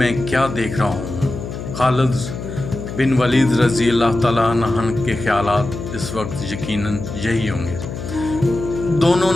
کیا دیکھ رہا ہوں؟ خالد بن ولید رضی اللہ تعالیٰ عنہ کے خیالات اس وقت یقیناً یہی ہوں گے۔ دونوں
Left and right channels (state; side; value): noise; left; hum, 8 dB below the sound